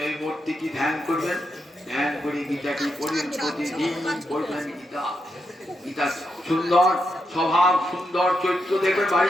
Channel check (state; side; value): normal; both; correlation 0.84